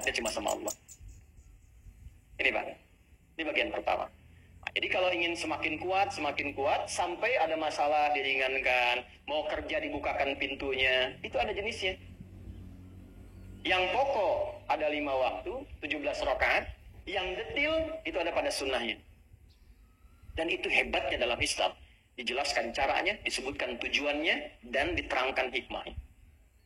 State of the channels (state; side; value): identical; both; correlation 1.00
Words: cuma sama Allah. Ini Pak, ini bagian pertama. Nah, jadi kalau ingin semakin kuat, sampai ada masalah diringankan, mau kerja dibukakan pintunya, itu ada jenisnya. Yang pokok ada 5 waktu, 17 rakaat. Yang detil itu ada pada sunnahnya. Dan itu hebatnya dalam Islam. Dijelaskan caranya, disebutkan tujuannya, dan diterangkan hikmahnya.